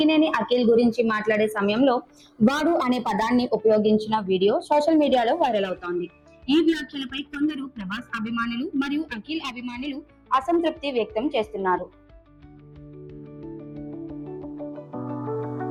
అఖిల్ గురించి మాట్లాడే సమయంలో వాడు అనే పదాన్ని ఉపయోగించిన వీడియో సోషల్ మీడియాలో వైరల్ అవుతోంది. ఈ వ్యాఖ్యలపై కొందరు ప్రభాస్ అభిమానులు మరియు అఖిల్ అభిమానులు అసంతృప్తి వ్యక్తం చేస్తున్నారు.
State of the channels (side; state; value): both; identical; correlation 1.00